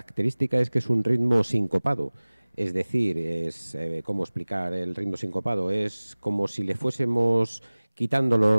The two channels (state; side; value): inverted; both; correlation -1.00